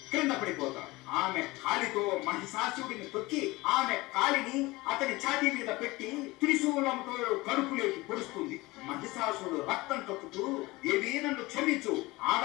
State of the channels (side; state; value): right; quieter; 21.4 dB